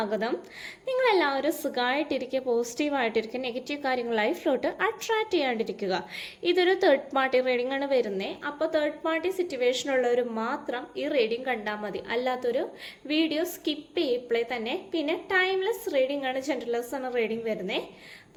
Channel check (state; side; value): identical; both; correlation 1.00